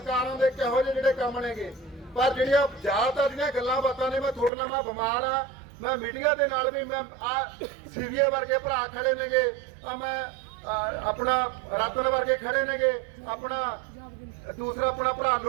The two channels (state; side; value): drops out; left; at 4.5 s